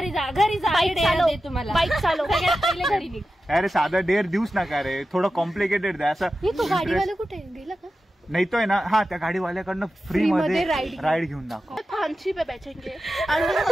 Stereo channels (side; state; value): both; normal; correlation 0.92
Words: जा बाईक तुम्हाला. बाईक चालव. पहिले घरी निघ. अरे साधा डेअर देऊच नका रे. थोडं कॉम्प्लिकेटेड द्या असं. तो गाडीवाला कुठे गेला का. नाही तो आहे ना. हा त्या गाडीवाल्याकडनं फ्री मध्ये राईड घेऊन दाखव. फांसी पे बैठेंगे और